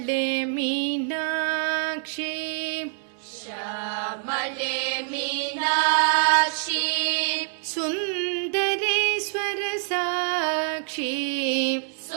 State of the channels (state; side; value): silent; left; 61 dB below the other